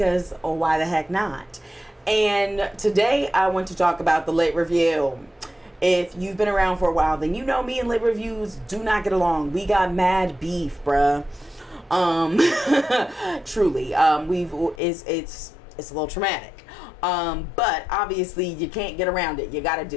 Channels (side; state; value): right; drops out; at 14.8 s